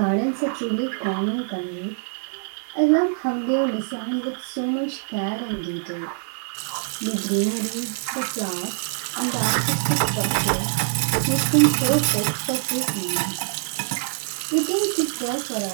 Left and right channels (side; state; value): left; silent; digital silence